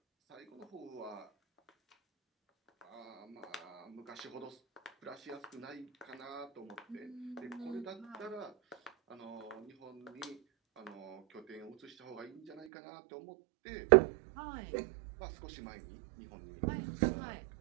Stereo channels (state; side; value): drops out; left; at 12.7 s